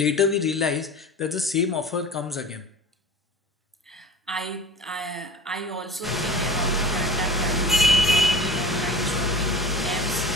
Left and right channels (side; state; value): both; normal; correlation 0.38